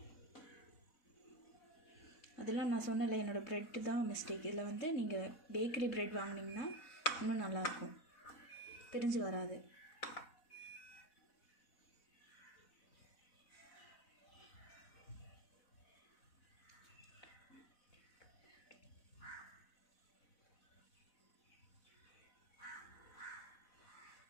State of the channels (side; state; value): right; late; 4.0 ms